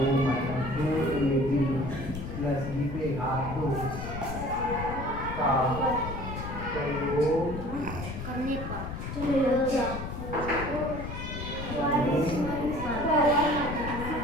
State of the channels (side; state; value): left; noise; rumble, 7 dB below the sound